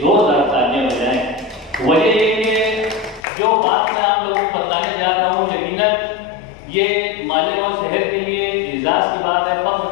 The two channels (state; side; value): drops out; right; at 3.2 s